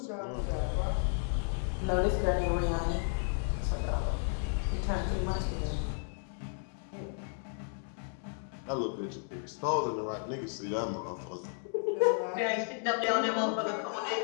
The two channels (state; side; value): silent; right; 56 dB below the other